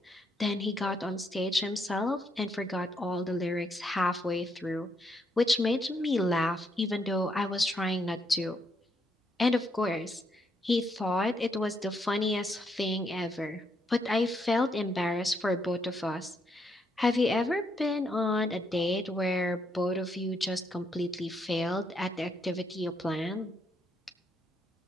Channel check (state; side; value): normal; both; correlation 0.76